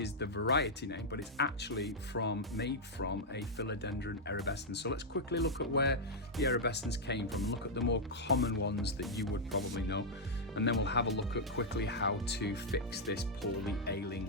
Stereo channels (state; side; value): normal; both; correlation -0.04